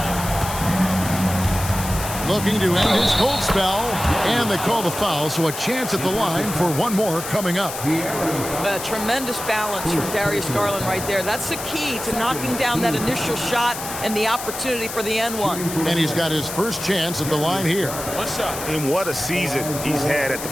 Looking to end his cold spell, and they call the foul, so a chance at the line for one more coming up. A tremendous balance from Darius Garland right there. That's the key to knocking down that initial shot and the opportunity for the N1. And he's got his first chance at the line here. And what a season he's had at the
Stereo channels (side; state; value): left; noise; hiss, 8 dB below the sound